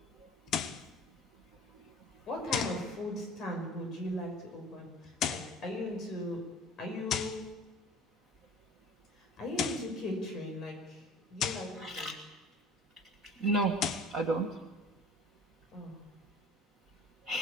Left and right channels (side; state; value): both; normal; correlation 0.44